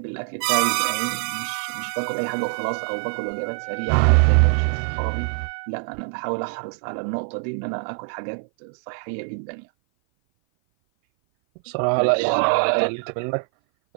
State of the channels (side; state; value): left; silent; 56 dB below the other